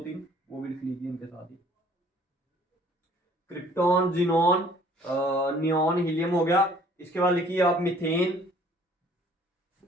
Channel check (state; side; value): normal; both; correlation 0.56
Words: वो भी लिख लीजिए इनके साथ ही। क्रिप्टॉन, जिनॉन, नियॉन, हीलियम हो गया। इसके बाद लिखिए आप मीथेन,